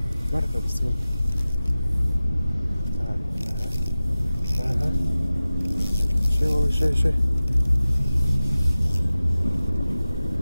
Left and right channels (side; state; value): both; inverted; correlation -0.96